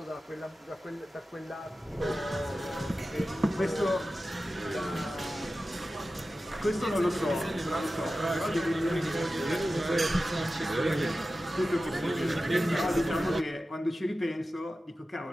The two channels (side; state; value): both; normal; correlation 0.94